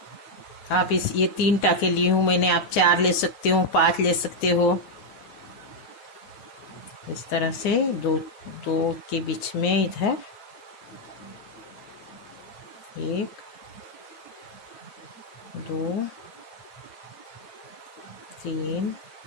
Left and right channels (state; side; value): late; right; 9.6 ms